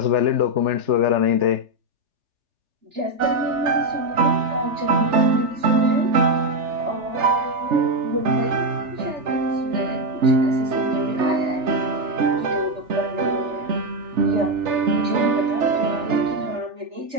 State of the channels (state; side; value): late; left; 3.4 ms